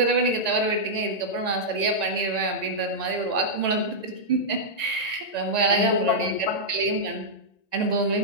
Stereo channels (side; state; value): right; late; 1.9 ms